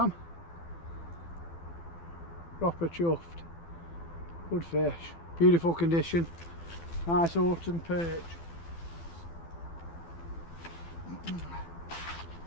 am. Proper chuffed. Good fish. Beautiful condition. Nice autumn perch.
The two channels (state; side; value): late; right; 12 ms